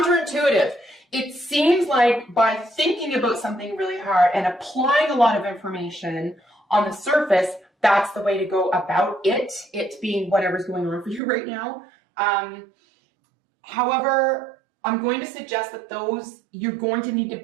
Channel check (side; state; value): left; drops out; at 11.2 s